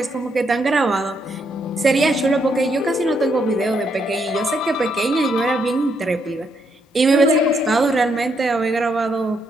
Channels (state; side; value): normal; both; correlation 0.76